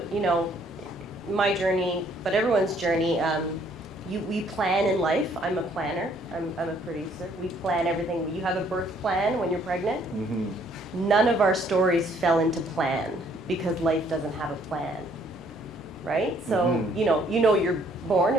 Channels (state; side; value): normal; both; correlation 0.64